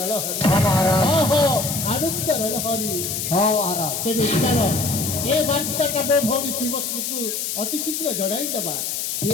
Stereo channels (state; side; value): noise; left; hiss, 3 dB below the sound